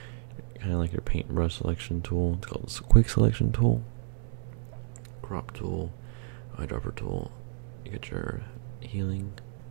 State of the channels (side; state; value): left; silent; 57 dB below the other